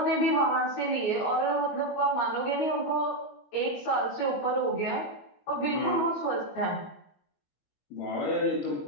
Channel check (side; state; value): right; late; 21 ms